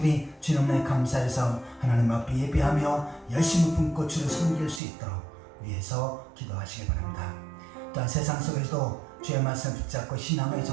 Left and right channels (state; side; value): drops out; left; at 4.8 s